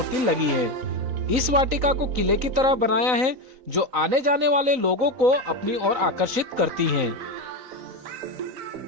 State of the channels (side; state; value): left; late; 3.9 ms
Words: लगी है। इस वाटिका को किले की तरह बनाया है जो आने जाने वाले लोगों को अपनी ओर आकर्षित करती है।